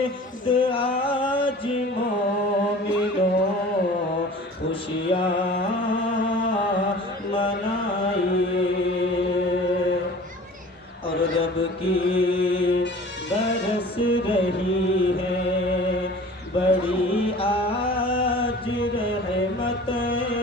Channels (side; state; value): both; normal; correlation 0.43